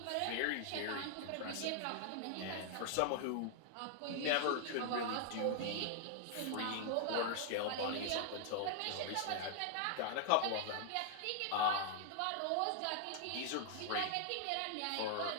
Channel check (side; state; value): both; different; correlation 0.00